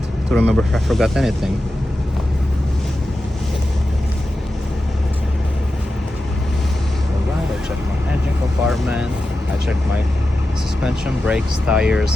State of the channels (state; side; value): normal; both; correlation 0.92